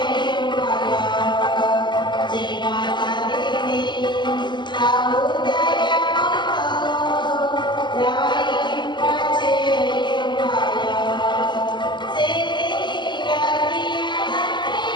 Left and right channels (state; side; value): late; right; 0.22 ms